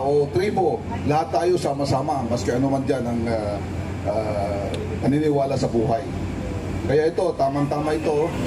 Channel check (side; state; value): both; identical; correlation 1.00